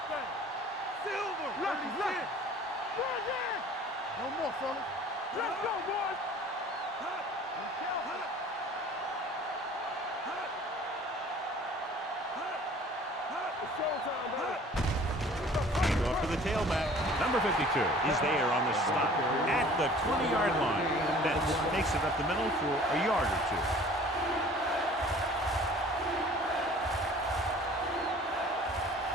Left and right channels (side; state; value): both; normal; correlation 0.49